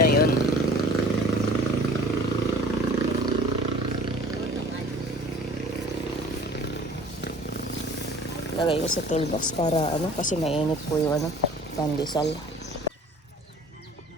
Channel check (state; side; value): normal; both; correlation 0.47